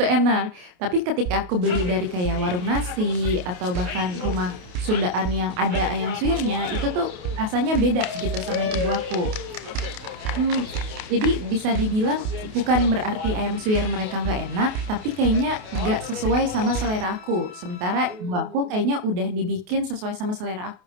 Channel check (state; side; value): late; left; 28 ms